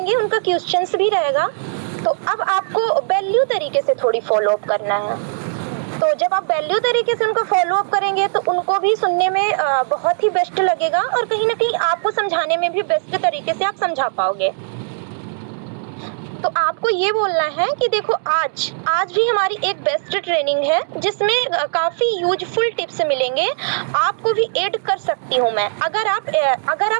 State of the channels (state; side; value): silent; left; digital silence